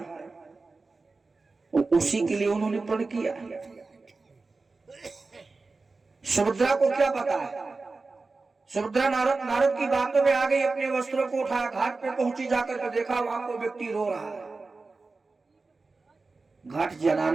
और उसी के लिए उन्होंने प्रण किया। सुभद्रा को क्या पता है? सुभद्रा नारद की बातों में आ गई, अपने वस्त्रों को उठाया, घाट पे पहुंची, जाकर के देखा वहां कोई व्यक्ति रो रहा है। घाट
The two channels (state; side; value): quieter; left; 3.8 dB